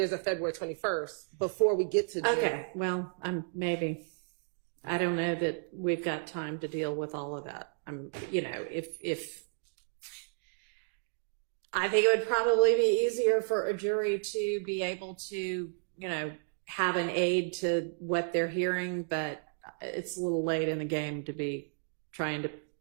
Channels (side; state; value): left; silent; digital silence